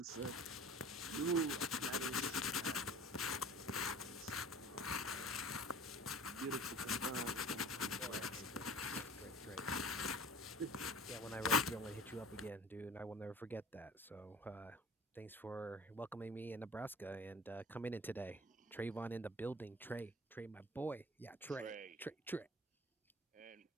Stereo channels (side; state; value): both; normal; correlation 0.43